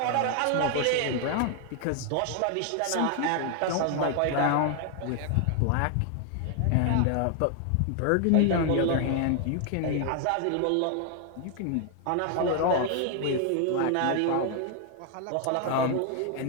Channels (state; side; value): different; both; correlation 0.00